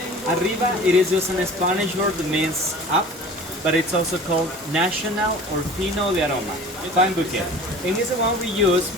Arriba, it is just a Spanish word that means up, but it's also called national or fino de aroma, fine bouquet. And it's the one we use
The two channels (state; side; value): normal; both; correlation 0.42